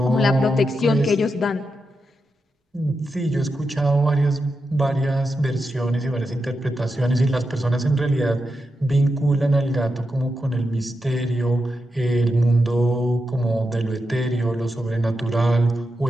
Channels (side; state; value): both; normal; correlation 0.87